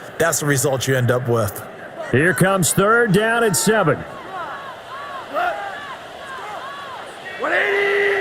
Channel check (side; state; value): both; identical; correlation 1.00